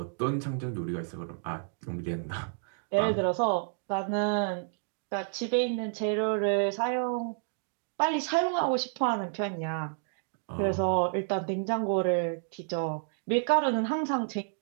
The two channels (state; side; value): silent; left; digital silence